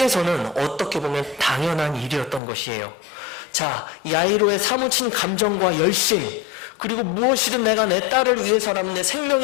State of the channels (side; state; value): right; drops out; at 2.4 s